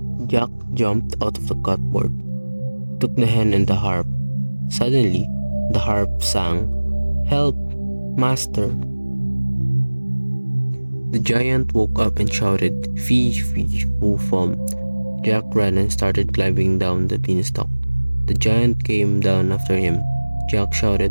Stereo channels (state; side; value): inverted; both; correlation -1.00